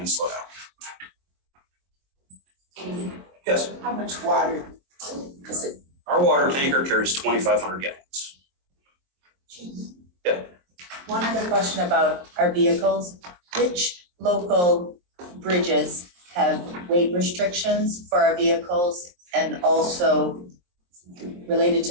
slow down. Yes? How much water? Our water tanker carries 2,500 gallons. Yeah. One other question about our vehicles. Which local bridges have weight restrictions for our vehicles? And also related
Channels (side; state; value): left; late; 22 ms